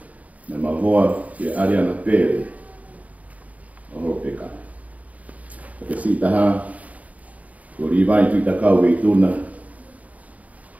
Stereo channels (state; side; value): late; left; 0.071 ms